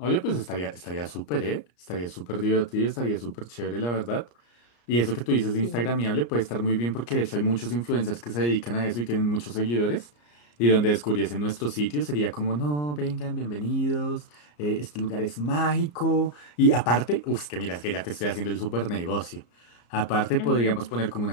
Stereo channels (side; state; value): right; late; 34 ms